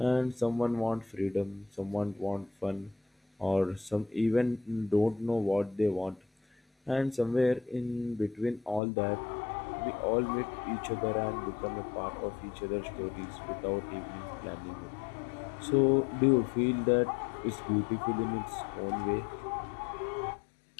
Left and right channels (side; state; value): right; drops out; at 8.8 s